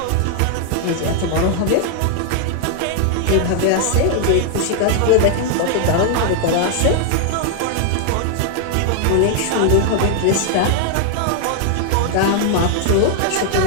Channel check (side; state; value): both; different; correlation 0.00